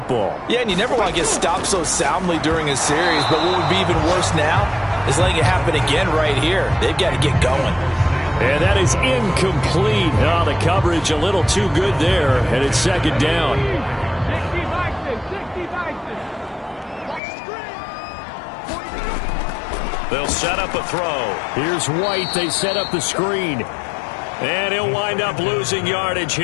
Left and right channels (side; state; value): right; drops out; at 17.2 s